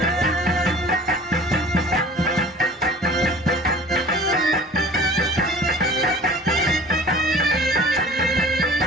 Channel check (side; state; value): both; normal; correlation 0.45